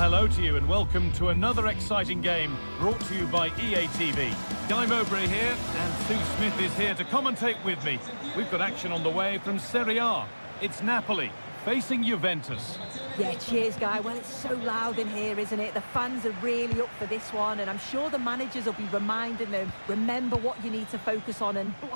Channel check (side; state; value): both; inverted; correlation -1.00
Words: to you and welcome to another exciting game brought to you by EA TV. Guy Mowbray here and Sue Smith is here to commentate with me. We've got action on the way from Serie A. It's Napoli facing Juventus. Yeah, cheers, Guy. Well, it's so loud in here, isn't it? The fans are really up for this one, and I'm sure the managers will be reminding them, remember what you need to focus on and